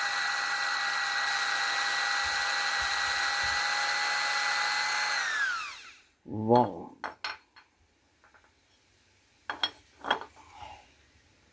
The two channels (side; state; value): both; identical; correlation 1.00